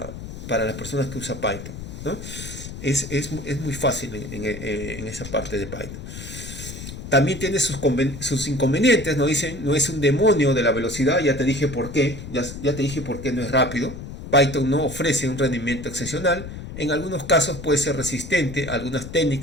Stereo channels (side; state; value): left; noise; rumble, 10 dB below the sound